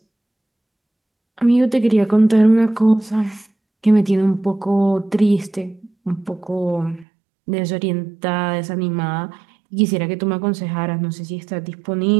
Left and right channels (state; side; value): drops out; left; at 7.1 s